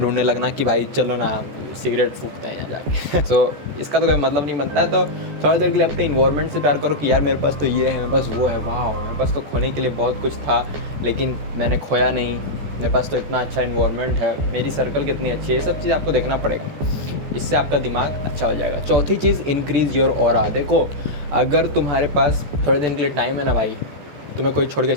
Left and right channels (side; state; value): left; late; 14 ms